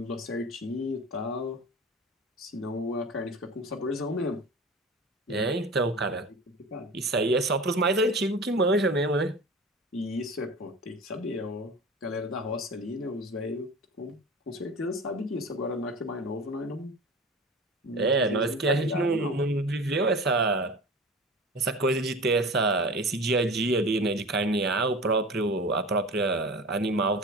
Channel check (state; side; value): normal; both; correlation 0.34